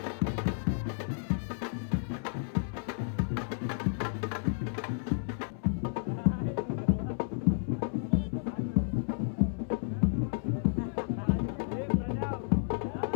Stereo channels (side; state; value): right; silent; 56 dB below the other